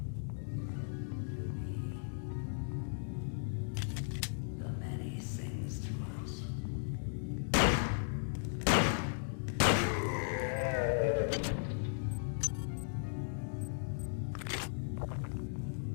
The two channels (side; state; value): right; silent; digital silence